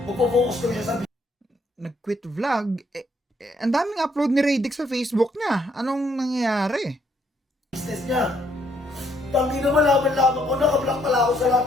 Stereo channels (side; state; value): both; normal; correlation 0.70